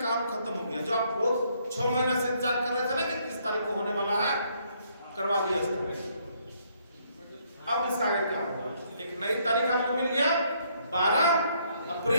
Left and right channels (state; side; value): inverted; both; correlation -0.69